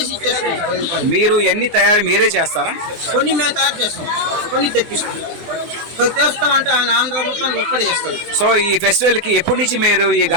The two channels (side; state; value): left; late; 24 ms